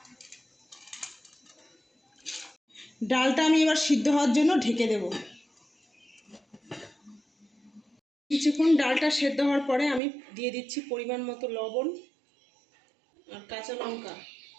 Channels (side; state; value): left; drops out; at 10.0 s